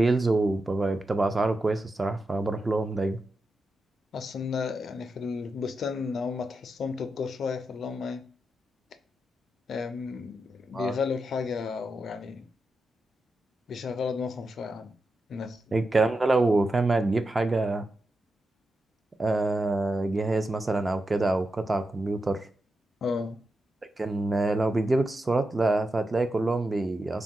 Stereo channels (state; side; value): normal; both; correlation 0.88